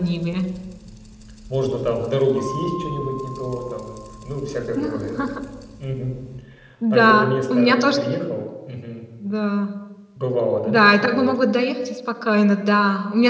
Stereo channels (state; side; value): identical; both; correlation 1.00